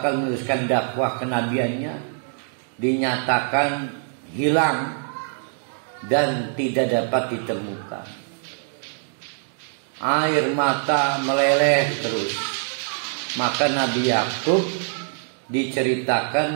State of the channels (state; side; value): silent; left; digital silence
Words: meneruskan dakwah kenabiannya dinyatakan hilang dan tidak dapat ditemukan. Air mata meleleh terus. Maka Nabi Yakub